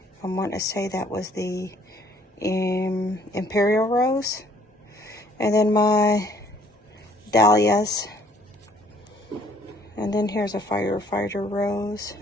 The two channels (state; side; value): normal; both; correlation 0.60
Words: I want to say that was the Imperial Rose. And then my dahlias. And then here's a Firefighter Rose.